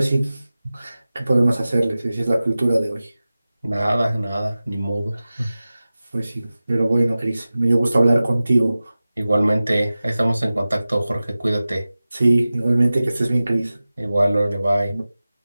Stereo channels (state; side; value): inverted; both; correlation -0.96